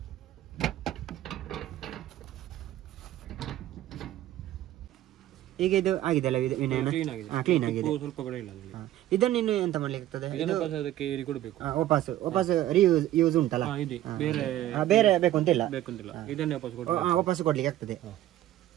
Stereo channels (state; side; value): quieter; left; 13.7 dB